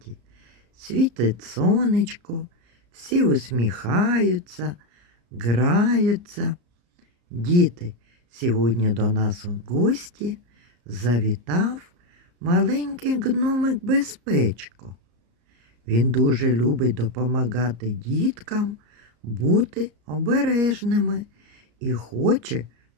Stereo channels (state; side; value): late; left; 34 ms